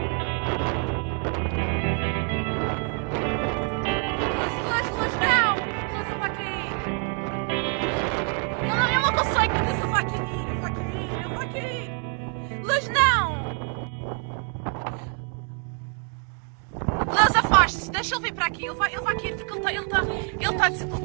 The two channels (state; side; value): quieter; left; 37.2 dB